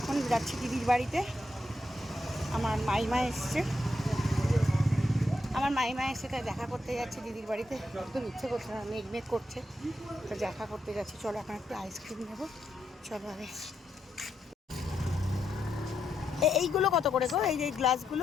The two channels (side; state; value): both; normal; correlation 0.82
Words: যাচ্ছি দিদির বাড়িতে। আমার মাইমা এসছে তাই দেখা করতে যাচ্ছি দিদির বাড়িতে। একদম ইচ্ছে করছে না, মেঘ করছে, তো দেখা করতে যাচ্ছি। চলো এখন একটু আইসক্রিম নেবো। চলো আগে। এইগুলো কত করে গো? এই যে